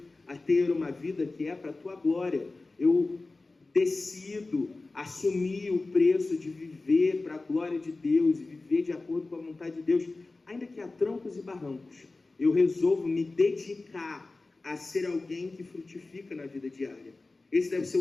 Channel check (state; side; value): quieter; right; 3.4 dB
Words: a ter uma vida que é para a tua glória. Eu decido assumir o preço de viver para a glória de Deus e viver de acordo com a vontade de Deus, ainda que há trancos e barrancos. Eu resolvo me dedicar a ser alguém que frutifica na vida diária. Esse deve ser